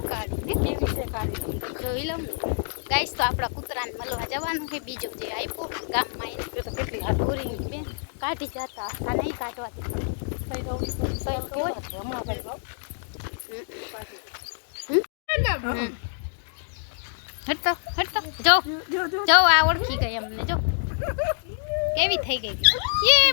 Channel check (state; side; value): silent; right; digital silence